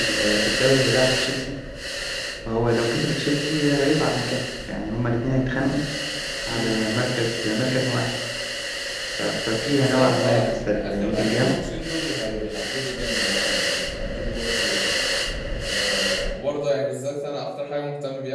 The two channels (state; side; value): identical; both; correlation 1.00